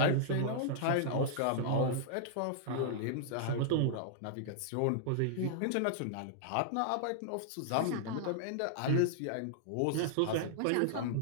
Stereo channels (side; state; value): both; different; correlation -0.01